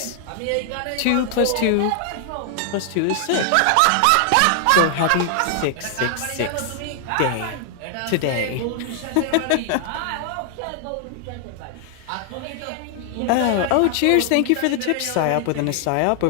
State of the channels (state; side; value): different; both; correlation 0.00